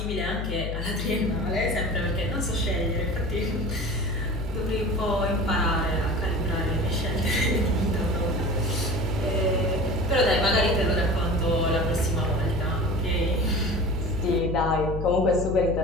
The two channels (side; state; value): left; noise; hum, 3 dB below the sound